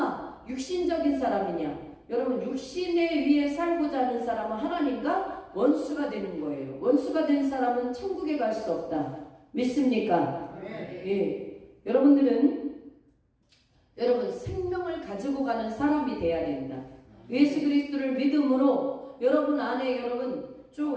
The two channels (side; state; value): both; identical; correlation 1.00